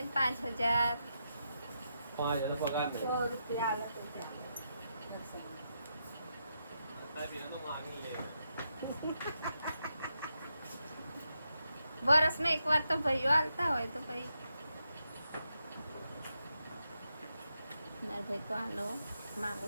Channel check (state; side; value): inverted; both; correlation -0.83